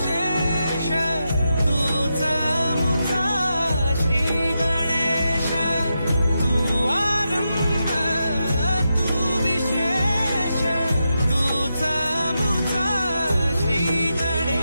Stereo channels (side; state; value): both; inverted; correlation -0.87